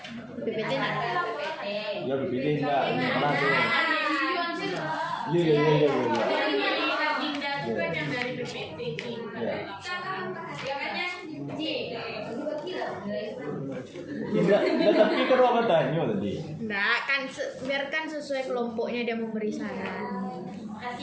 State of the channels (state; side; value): identical; both; correlation 1.00